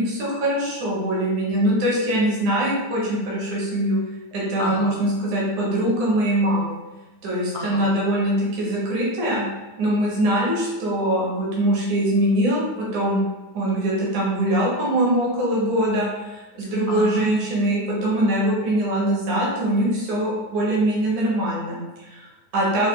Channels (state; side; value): late; left; 9.7 ms